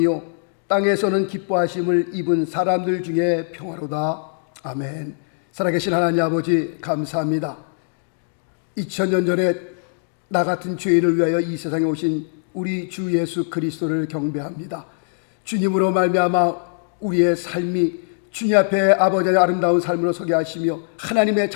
땅에서는 기뻐하심을 입은 사람들 중에 평화로다. 아멘. 살아계신 하나님 아버지 감사합니다. 2000년 전에 나 같은 죄인을 위하여 이 세상에 오신 우리 주 예수 그리스도를 경배합니다. 주님으로 말미암아 우리의 삶이 주님 앞에 아버지의 아름다운 삶으로 서게 하시며 하나님의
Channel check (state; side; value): silent; right; digital silence